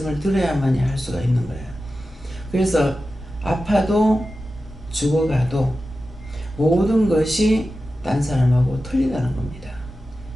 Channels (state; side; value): normal; both; correlation 0.93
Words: 들어야만이 할 수가 있는 거예요. 그래서 아파도 죽어가도 모든 것이 딴 사람하고 틀리다는 겁니다.